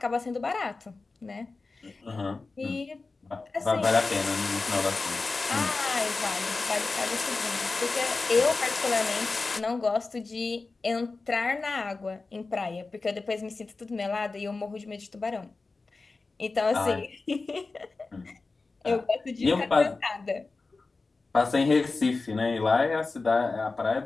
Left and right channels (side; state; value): right; quieter; 3.8 dB